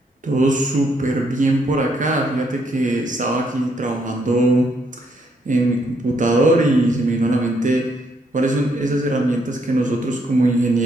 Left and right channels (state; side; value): normal; both; correlation 0.73